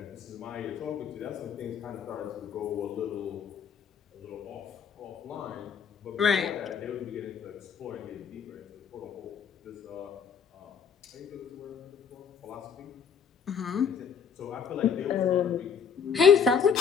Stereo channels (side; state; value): right; quieter; 6.9 dB